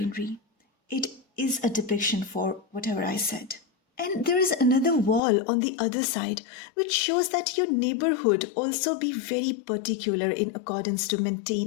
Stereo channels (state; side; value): drops out; right; at 5.2 s